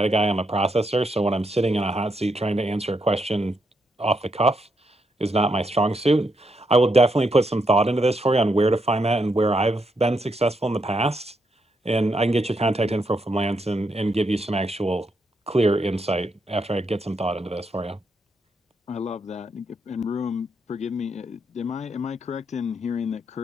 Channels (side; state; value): both; normal; correlation 0.79